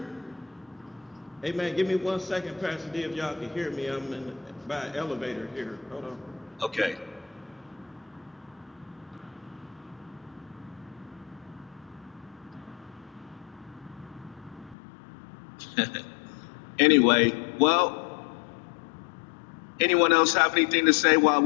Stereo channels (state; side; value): drops out; right; at 14.8 s